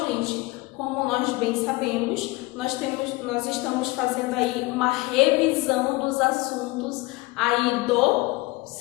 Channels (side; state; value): right; quieter; 22.2 dB